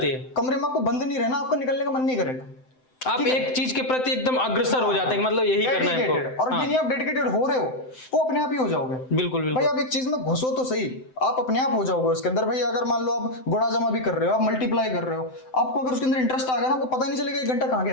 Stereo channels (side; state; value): right; late; 7.8 ms